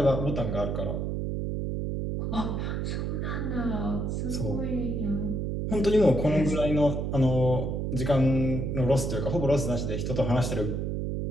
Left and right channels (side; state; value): right; noise; hum, 1 dB below the sound